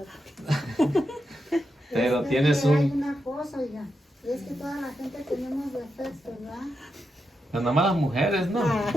pero Es tienes que Hay un... una cosa, oiga, es que toda la gente tenemos defectos, ¿verdad? Pero nada más las mujeres, ¿no?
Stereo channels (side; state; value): both; normal; correlation 0.86